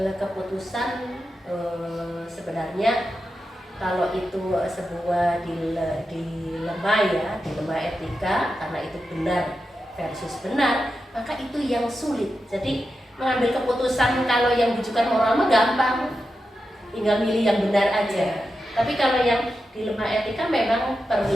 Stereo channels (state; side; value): normal; both; correlation 0.89